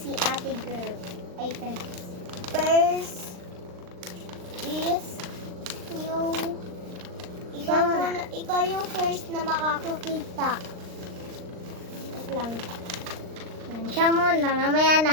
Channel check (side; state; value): left; late; 39 ms